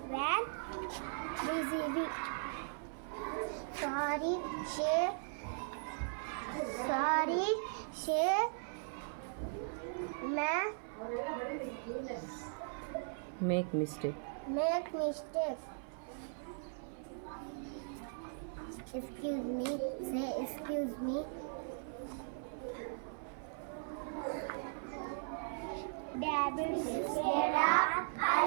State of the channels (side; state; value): left; silent; 52 dB below the other